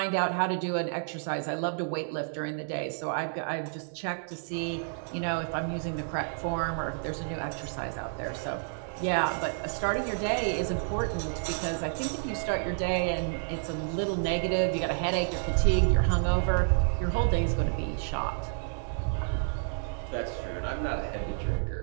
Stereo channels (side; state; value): left; silent; digital silence